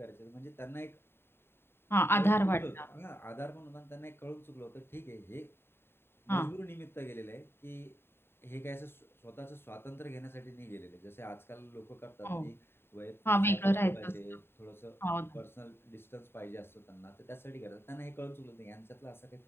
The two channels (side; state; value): right; late; 0.11 ms